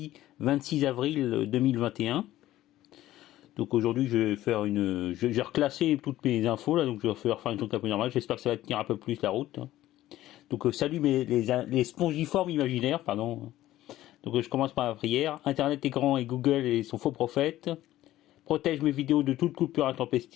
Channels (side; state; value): right; quieter; 14.6 dB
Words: 26 avril 2021. Donc aujourd'hui je vais faire j'ai reclassé toutes mes infos là, donc je vais faire un truc un peu normal. J'espère que ça va tenir un peu plus la route. Donc salut les spongiformes imaginaires, pardon. Donc je commence par la prière. Internet est grand et Google et son faux prophète. Protège mes vidéos de toute coupure